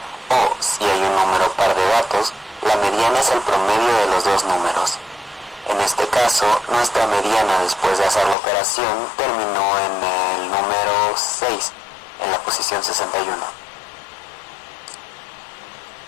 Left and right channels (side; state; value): right; drops out; at 8.3 s